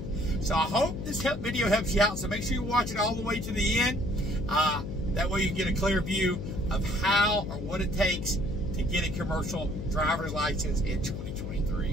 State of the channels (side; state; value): left; noise; hum, 7 dB below the sound